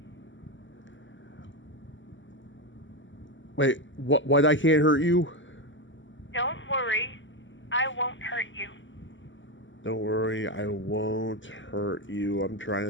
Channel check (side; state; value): right; late; 0.55 ms